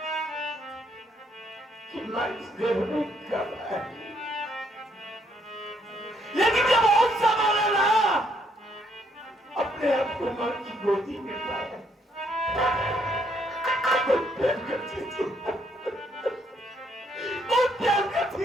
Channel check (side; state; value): both; normal; correlation 0.71